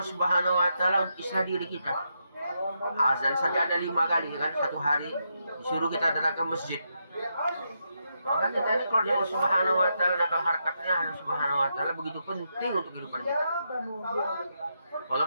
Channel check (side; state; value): both; inverted; correlation -0.82